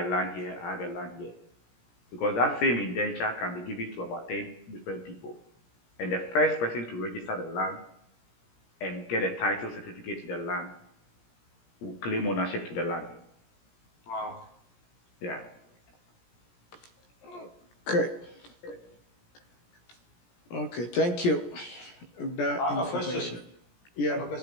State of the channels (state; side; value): late; right; 17 ms